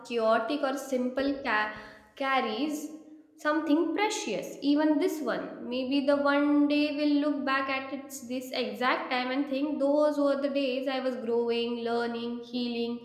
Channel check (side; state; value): both; identical; correlation 1.00